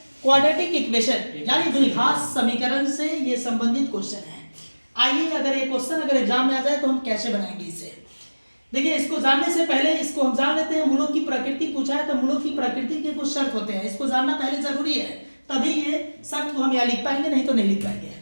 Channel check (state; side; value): inverted; both; correlation -1.00